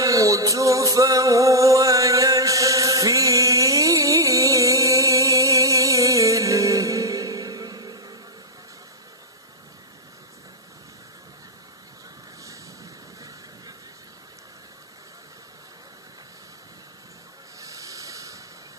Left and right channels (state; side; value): normal; both; correlation -0.02